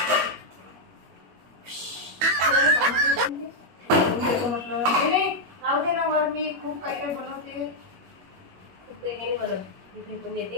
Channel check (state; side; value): late; left; 21 ms